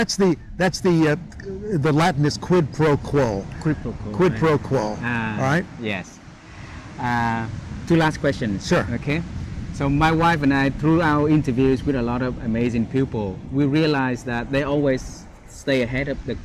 the Latin is quid pro quo. Quid pro quo. Quid pro quo. All right. Yes. Two last questions. Sure. Okay. So my wife and I, through our interviews with a lot of amazing people, we realized that they always stay ahead of the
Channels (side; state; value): both; identical; correlation 1.00